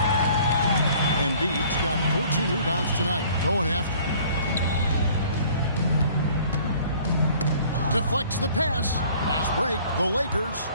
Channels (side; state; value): both; inverted; correlation -0.53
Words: Embiid's got 14 rebounds tonight. Going after. Deflects the pass. Fast break. The Lakers.